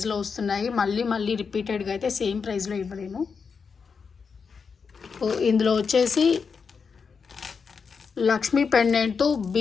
వస్తున్నాయి. మళ్ళీ రిపీటెడ్గా అయితే సేమ్ ప్రైస్లో ఇవ్వలేము. ఇందులో వచ్చేసి లక్ష్మీ పెండెంట్తో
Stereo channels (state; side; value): quieter; right; 5.7 dB